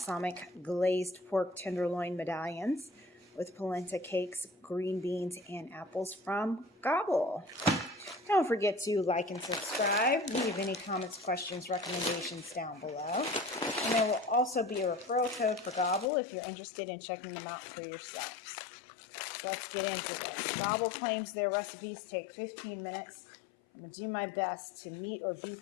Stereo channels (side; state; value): right; drops out; at 16.1 s